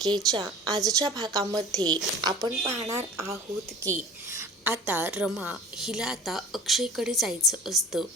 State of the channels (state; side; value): normal; both; correlation 0.40